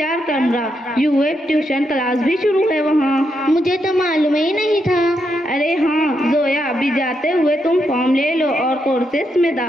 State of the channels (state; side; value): normal; both; correlation 0.81